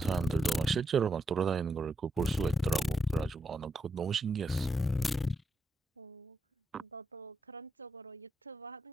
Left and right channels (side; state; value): both; normal; correlation 0.84